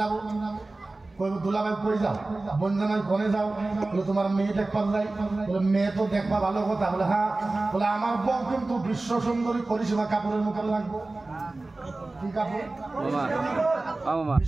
দুলাভাই কই যাও? বনজানাই কোনে যাও? বলে তোমার মেয়ে দেখবার যাই। বলে মেয়ে তো দেখবা ভালো কথা। বলে হ্যাঁ। বলে আমার বউ কিন্তু বিশ্ব সুন্দরী করিসীমা কাপড়ের মুখে লাগবো। কি কাপড়?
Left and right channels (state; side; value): quieter; left; 3.1 dB